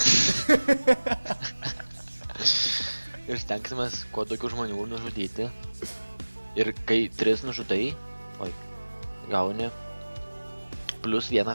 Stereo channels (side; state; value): both; inverted; correlation -1.00